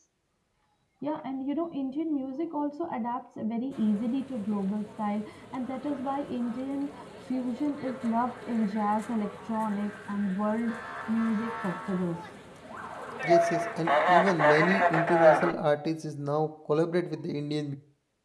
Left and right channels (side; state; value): both; identical; correlation 1.00